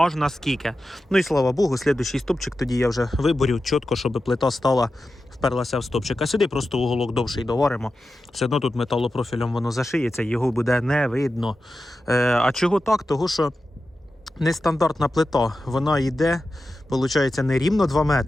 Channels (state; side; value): normal; both; correlation 0.92